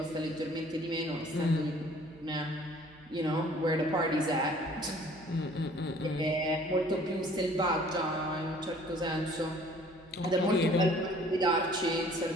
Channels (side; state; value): right; noise; hum, 25 dB below the sound